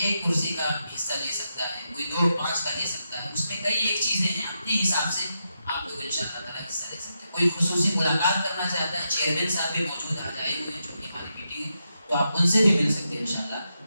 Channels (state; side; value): inverted; both; correlation -0.85